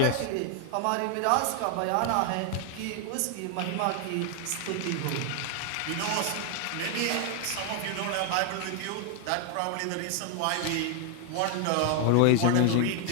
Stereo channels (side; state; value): both; different; correlation 0.00